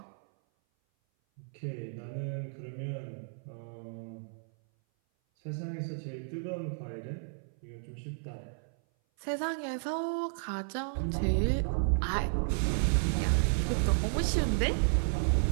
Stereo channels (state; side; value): silent; left; 56 dB below the other